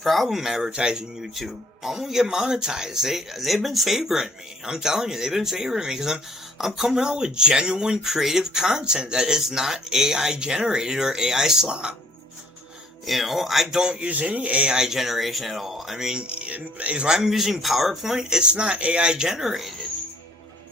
advertising YouTube. I'm gonna get monetized. They've been favoring me. I'm telling you, they've been favoring me because I'm coming out with genuine creative content that is not AI generated or AI slop. I don't use any AI generation at all. I mean, if I'm using PowerPoint, it's not AI generated.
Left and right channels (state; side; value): normal; both; correlation 0.59